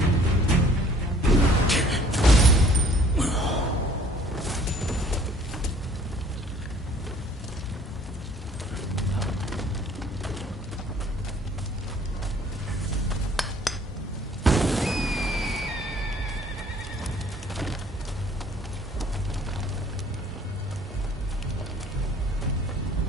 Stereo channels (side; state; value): both; normal; correlation 0.55